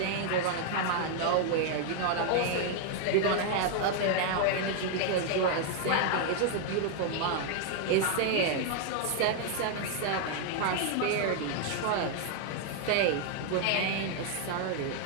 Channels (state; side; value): different; both; correlation 0.00